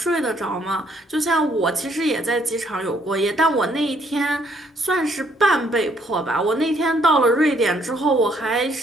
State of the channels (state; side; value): normal; both; correlation 0.67